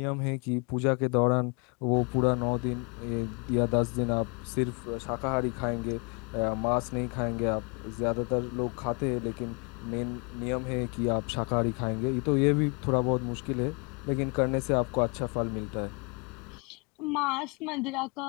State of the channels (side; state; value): right; quieter; 32.8 dB